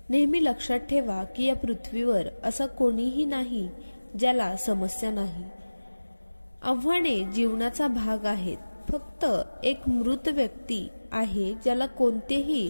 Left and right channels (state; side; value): inverted; both; correlation -1.00